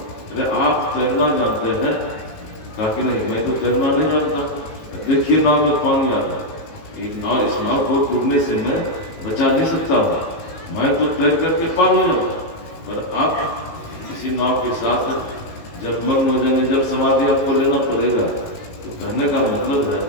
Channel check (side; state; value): right; late; 19 ms